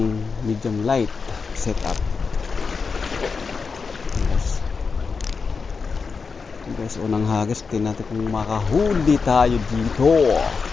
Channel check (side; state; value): right; quieter; 5.0 dB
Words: medium light setup. Guys, unang hagis, tingnan natin kung makahuli tayo dito.